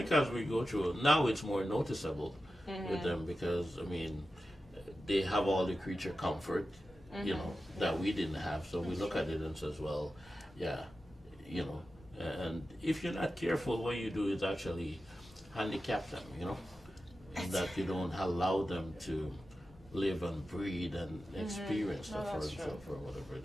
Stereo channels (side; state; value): both; normal; correlation 0.92